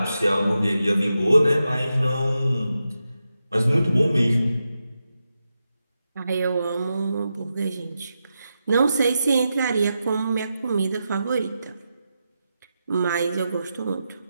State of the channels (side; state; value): both; inverted; correlation -0.88